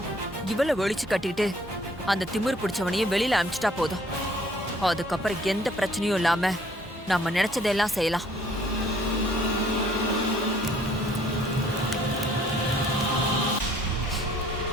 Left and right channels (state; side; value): normal; both; correlation 0.60